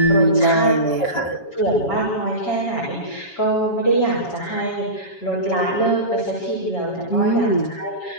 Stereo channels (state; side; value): late; right; 7.2 ms